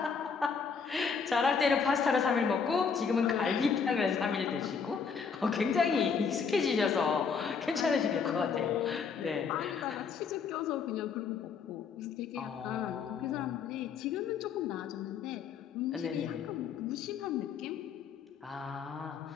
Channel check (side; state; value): right; quieter; 5.9 dB